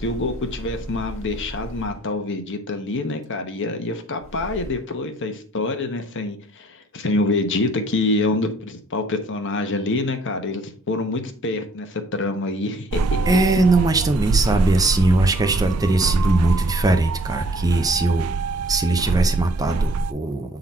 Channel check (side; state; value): both; normal; correlation 0.58